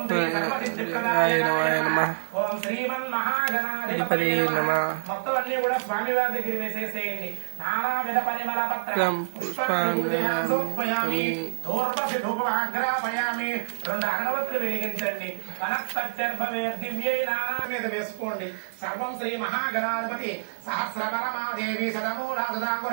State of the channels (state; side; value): silent; left; digital silence